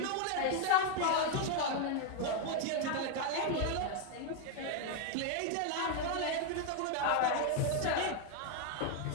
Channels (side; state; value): both; different; correlation 0.01